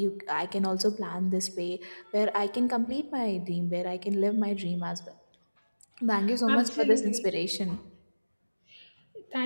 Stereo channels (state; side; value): inverted; both; correlation -1.00